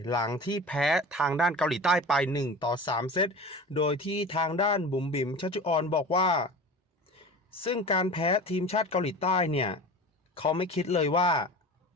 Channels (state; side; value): normal; both; correlation 0.35